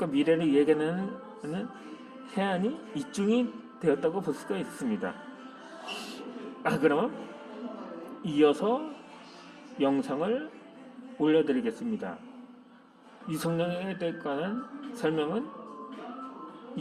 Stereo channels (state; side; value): identical; both; correlation 1.00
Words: 미래를 예견하는 해안이 입증이 되었다고 볼 수가 있습니다. 그러면 이어서 영상을 올려드리겠습니다. 유승룡에 관한 설명은